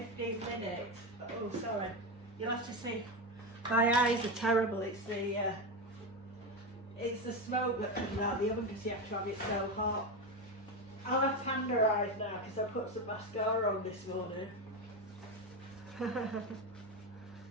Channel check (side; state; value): both; normal; correlation 0.15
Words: minutes. Oh, sorry. You'll have to see. My eyes are terrible. It's the smoke that comes out of the oven because you have to have it so hot. I'll have tender eyes now because I put some mascara on this morning.